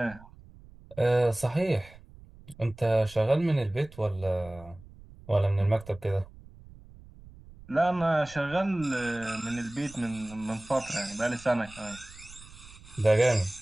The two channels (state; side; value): noise; right; rumble, 21 dB below the sound